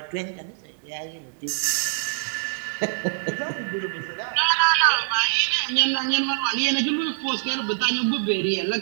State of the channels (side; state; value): left; silent; digital silence